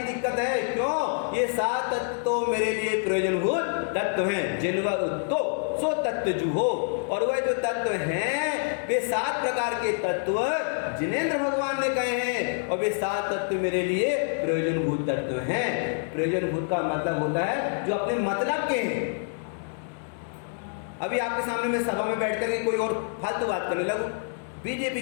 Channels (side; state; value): right; silent; 60 dB below the other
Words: दिक्कत है। क्यों? ये 7 तत्व तो मेरे लिए प्रयोजनभूत तत्व हैं। जिनवर उत्तो सो तत्व जुहो। और वह जो तत्व हैं वे 7 प्रकार के तत्व जिनेंद्र भगवान ने कहे हैं, और वे 7 तत्व मेरे लिए प्रयोजनभूत तत्व हैं। प्रयोजनभूत का मतलब होता है जो अपने मतलब के हैं। अभी आपके सामने मैं सभा में बैठ कर कोई और फालतू बात करने लगूं, बीजेपी